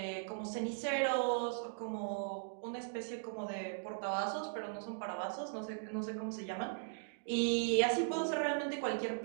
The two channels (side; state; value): left; silent; digital silence